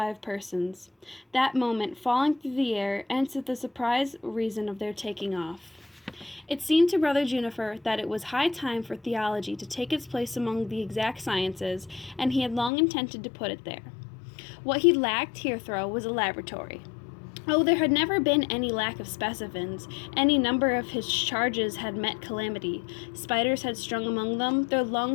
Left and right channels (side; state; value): right; drops out; at 12.7 s